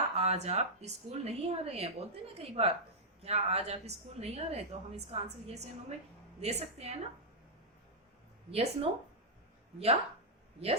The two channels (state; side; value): normal; both; correlation -0.08